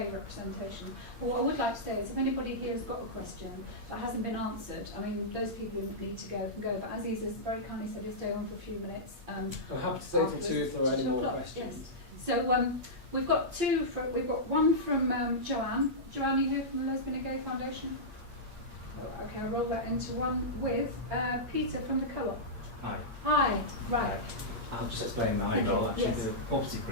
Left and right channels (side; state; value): left; late; 8.6 ms